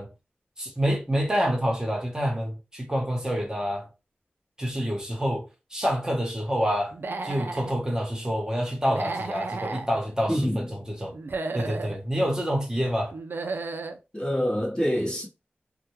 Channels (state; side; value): normal; both; correlation 0.92